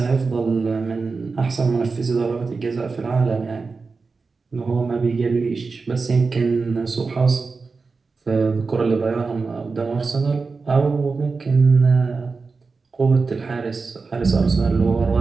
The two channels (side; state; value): left; quieter; 4.4 dB